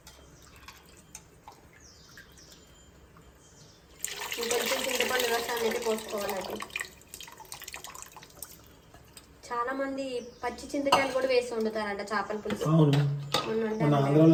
చింతపండు రసాన్ని అయితే పోసుకోవాలి. చాలా మంది పచ్చి చింతకాయలు కూడా వేసి వండుతారంట చేపల పులుసు.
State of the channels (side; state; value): both; identical; correlation 1.00